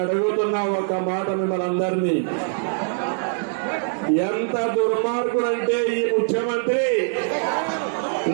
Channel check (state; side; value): silent; left; digital silence